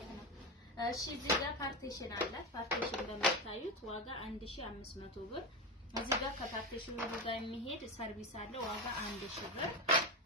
ነው። እሺ እዚህ ጋር ፓርቲሽን አላት። ፓርቲሽን እንደምታዩት ዋጋ 1500 ብር። እዚህ ጋር ከፓርቲሽኑ ጋር የሚሄድ ሰርቪስ አለ ዋጋ 1000 ብር።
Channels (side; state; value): both; normal; correlation 0.16